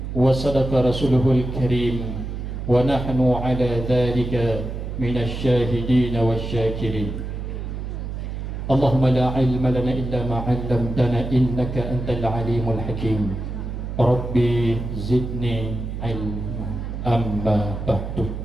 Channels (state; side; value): noise; right; hum, 6 dB below the sound